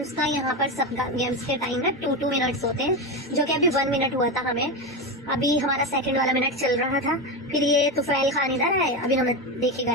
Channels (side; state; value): both; normal; correlation 0.16